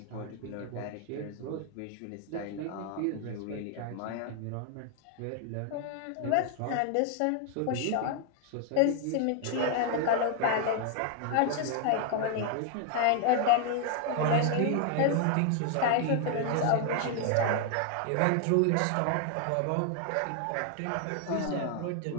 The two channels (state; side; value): different; both; correlation 0.00